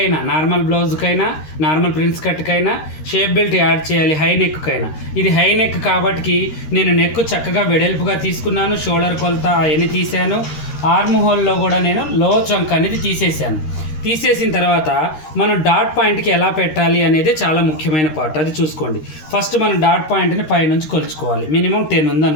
నార్మల్ బ్లౌజ్కైనా నార్మల్ ప్రిన్స్ కట్కైనా షేప్ బెల్ట్ యాడ్ చేయాలి, హై నెక్కైనా. ఇది హై నెక్ కాబట్టి నేను నెక్ చక్కగా వెడల్పుగా తీసుకున్నాను, షోల్డర్ కొలత అవన్నీ తీసాను. ఆర్మ్ హోల్లో కూడా నేను లో చంక్ అనేది తీసేసాను. తీసేసిన తర్వాత మనం డాట్ పాయింట్కి ఎలా పెట్టాలి అనేది చాలా ముఖ్యమైన పార్ట్, అది చూసుకోండి. ఫస్ట్ మనం డాట్ పాయింట్ని పైనుంచి కొలుచుకోవాలి. మినిమం 10 ఉంది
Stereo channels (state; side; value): late; right; 13 ms